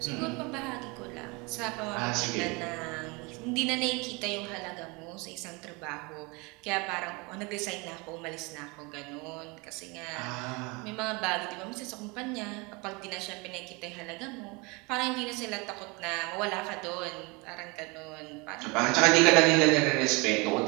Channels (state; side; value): quieter; left; 27.5 dB